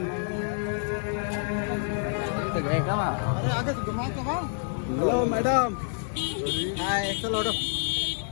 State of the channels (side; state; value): right; silent; 59 dB below the other